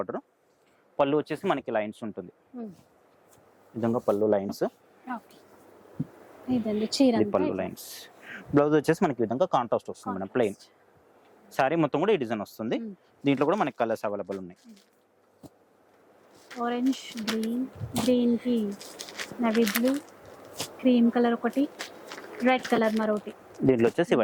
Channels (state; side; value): identical; both; correlation 1.00